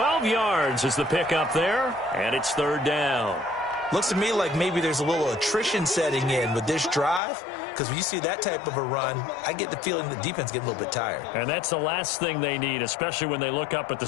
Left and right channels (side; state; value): right; drops out; at 7.2 s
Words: yards is the pickup there, and it's 3rd down. Looks to me like maybe there's a little attrition setting in with this drive, because when you see that type of a run, I get the feeling the defense getting a little bit tired. And that's the last thing they need, especially when they look up at the